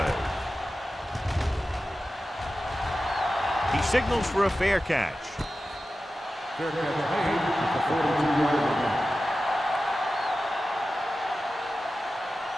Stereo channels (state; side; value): normal; both; correlation 0.94